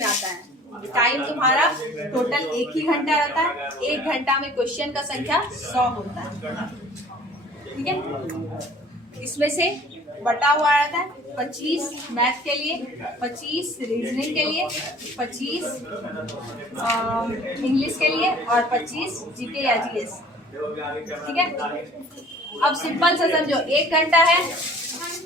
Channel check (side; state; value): both; normal; correlation 0.50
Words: आता है। टाइम तुम्हारा टोटल 1 ही घंटा रहता है, 1 घंटा में क्वेश्चन का संख्या 100 होता है, ठीक है। इसमें से बटा हुआ रहता है 25 मैथ के लिए, 25 रीजनिंग के लिए, 25 इंग्लिश के लिए और 25 जीके या जीएस, ठीक है। अब सिंपल से समझो, 1 घंटा है